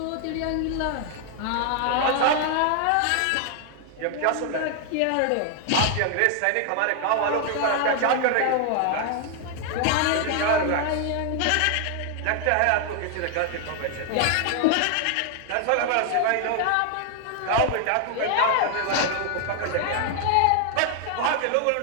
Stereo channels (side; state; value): both; different; correlation 0.00